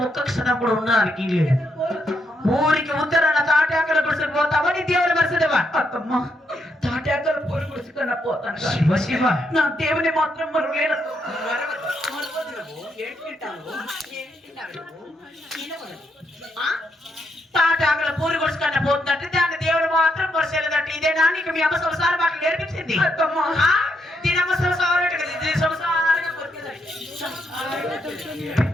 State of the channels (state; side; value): normal; both; correlation 0.78